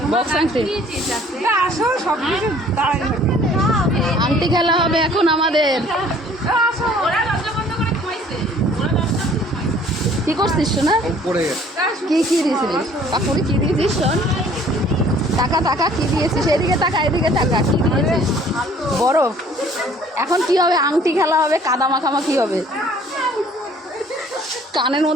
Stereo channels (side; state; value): both; normal; correlation 0.55